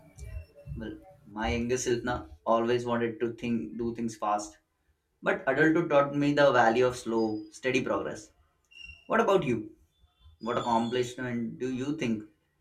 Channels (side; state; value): both; identical; correlation 1.00